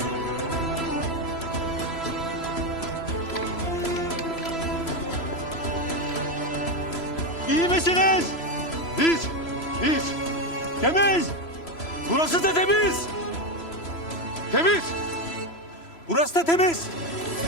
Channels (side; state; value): right; late; 3.0 ms